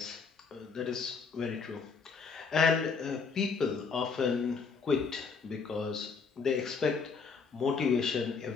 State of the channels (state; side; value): quieter; right; 5.2 dB